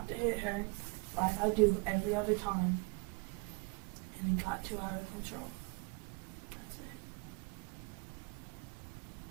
to hit her like I do every other time. And it got too out of control. That's it.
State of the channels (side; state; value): left; quieter; 31.0 dB